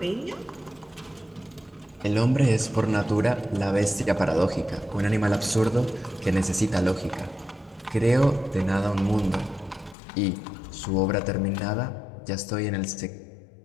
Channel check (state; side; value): drops out; right; at 10.0 s